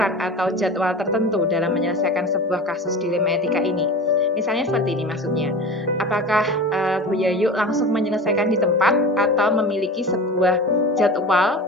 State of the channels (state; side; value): normal; both; correlation 0.33